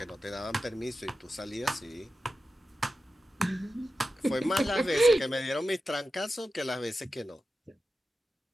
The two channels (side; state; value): both; normal; correlation 0.92